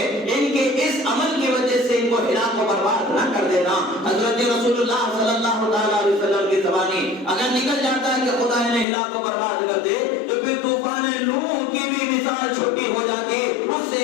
ان کے اس عمل کی وجہ سے ان کو ہلاک و برباد نہ کر دینا. حضرت رسول اللہ صلی اللہ تعالی علیہ وسلم کی زبانی اگر نکل جاتا ہے کہ خدا انہیں ہلاک و برباد کر دے تو پھر طوفان نوح کی بھی مثال چھوٹی ہو جاتی, اس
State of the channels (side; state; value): right; drops out; at 8.8 s